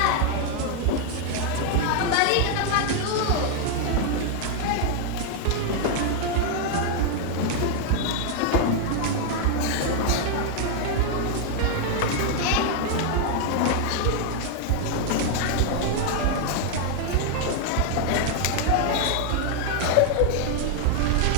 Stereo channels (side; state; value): both; different; correlation 0.00